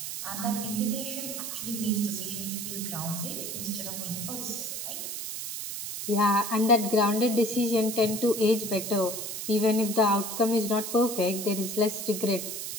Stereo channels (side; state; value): right; noise; hiss, 6 dB below the sound